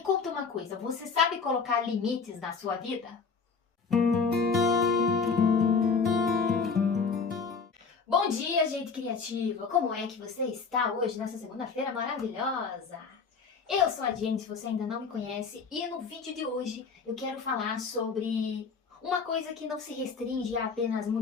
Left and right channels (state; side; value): quieter; right; 5.2 dB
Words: conta uma coisa, você sabe colocar limites na sua vida? Bom dia, gente criativa! Como é que você está hoje, nessa segunda-feira maravilhosa? Eu sou a Jenny, se você ainda não me conhece, e no vídeo de hoje eu quero falar sobre uma coisa que não se restringe a apenas